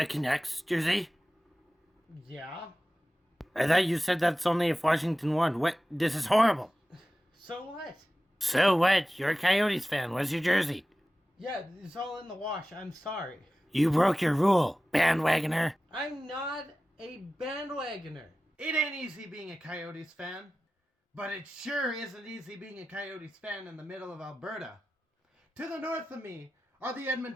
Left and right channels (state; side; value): normal; both; correlation 0.95